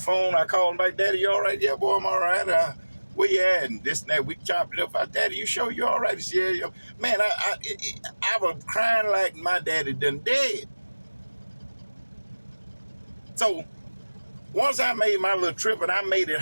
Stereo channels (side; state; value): both; inverted; correlation -1.00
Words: I called him back. Daddy, you all right? Yeah, boy, I'm all right. Where you at? And this and that. We chopped it up. I said, Daddy, you sure you all right? He said, yeah. Man, I was crying like my daddy done dead. So once I made my little trip and I made it